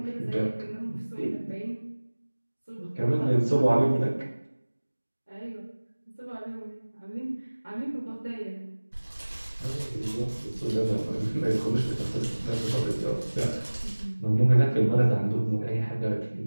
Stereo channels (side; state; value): both; inverted; correlation -1.00